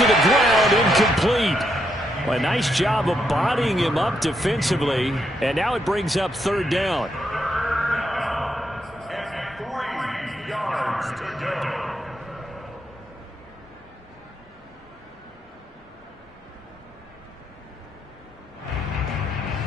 the ground, incomplete. Well, a nice job of bodying him up defensively. And now it brings up 3rd down. And 3 yards to go.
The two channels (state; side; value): normal; both; correlation 0.78